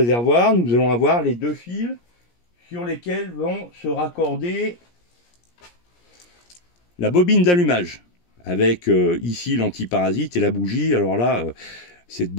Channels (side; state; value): right; late; 17 ms